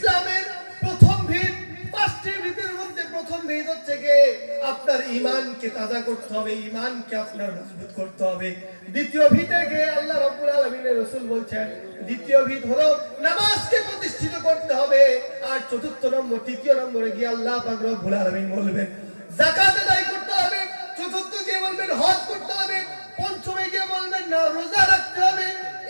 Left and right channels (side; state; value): both; inverted; correlation -1.00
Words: প্রথম ভিত, পাঁচটি ভিতের মধ্যে প্রথম ভিত হচ্ছে যে আপনার ঈমানকে তাজা করতে হবে, ঈমানকে আপনার মজবুত করতে হবে। দ্বিতীয় ভিতে গিয়ে আল্লাহ রাব্বুল আলামিনের রাসূল বলছেন, দ্বিতীয় ভিত হলো নামাজকে প্রতিষ্ঠিত করতে হবে। আর চতুর্থ নম্বর, তৃতীয় নম্বরে গিয়ে আল্লাহ পাক রব্বুল আলামিন বলবেন যাকাত আদায় করতে হবে। চতুর্থ গিয়ে বলবেন হজ করতে হবে। পঞ্চমে গিয়ে বলবেন না রোজা রাখতে হবে।